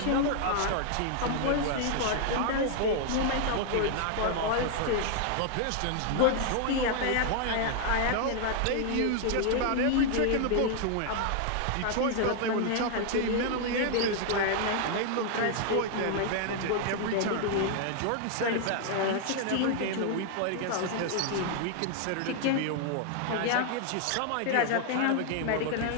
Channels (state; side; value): different; both; correlation 0.00